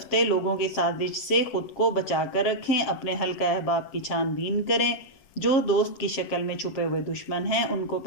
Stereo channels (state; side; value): late; right; 7.5 ms